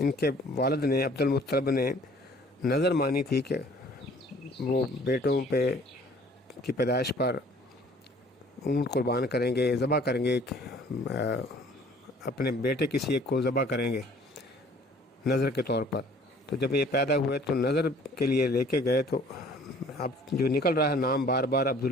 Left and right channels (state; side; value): normal; both; correlation 0.54